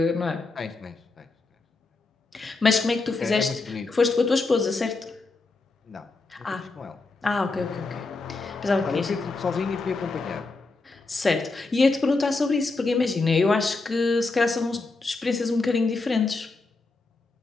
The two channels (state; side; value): quieter; right; 3.6 dB